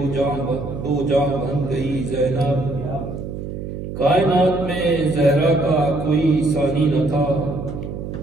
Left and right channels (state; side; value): noise; right; hum, 7 dB below the sound